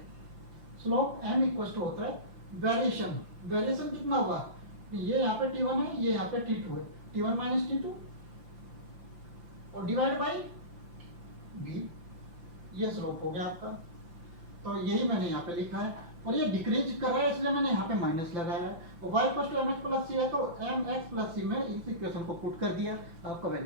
स्लोप m इक्वल टू होता है वेरिएशन। वेरिएशन कितना होगा, ये यहाँ पे T1 है, ये यहाँ पे T2 है, T1 माइनस T2 और डिवाइड बाई b, ये स्लोप हो गया आपका। तो यही मैंने यहाँ पे लिखा है, और ये डिक्रीज कर रहा है इसलिए मैंने यहाँ पे माइनस लगाया है। और y equal to mx plus C है, तो mx प्लस सी में इस इक्वेशन को पुट कर दिया, आपका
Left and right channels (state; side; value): late; left; 5.9 ms